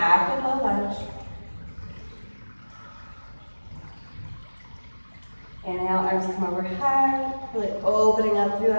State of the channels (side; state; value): both; inverted; correlation -1.00